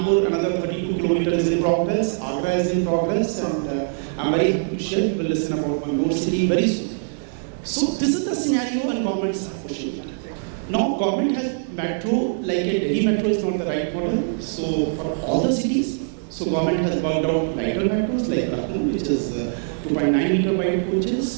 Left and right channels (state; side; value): silent; left; digital silence